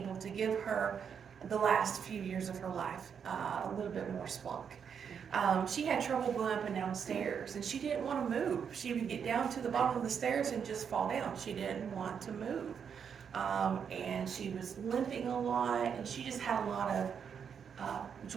to give her the last few years of her life a little bit more spunk. She had trouble going up and down stairs, and she didn't want to move. She would get down to the bottom of the stairs and just fall down. She didn't want to move. And she was limping a lot, and she just had a lot of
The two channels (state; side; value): quieter; left; 7.2 dB